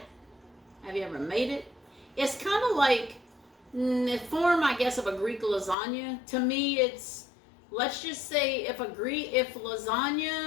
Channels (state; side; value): drops out; right; at 5.8 s